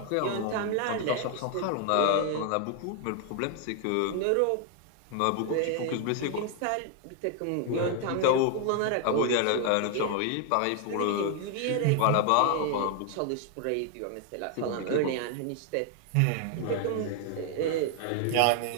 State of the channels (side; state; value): both; different; correlation 0.00